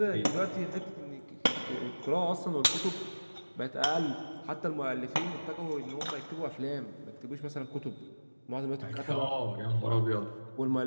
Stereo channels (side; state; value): both; inverted; correlation -1.00